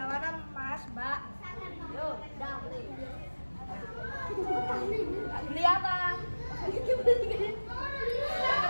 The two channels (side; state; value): both; inverted; correlation -1.00